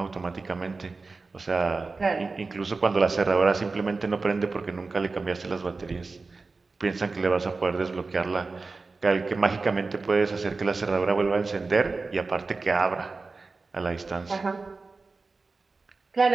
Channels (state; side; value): quieter; left; 3.9 dB